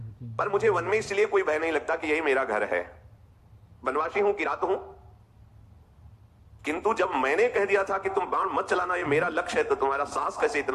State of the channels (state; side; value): identical; both; correlation 1.00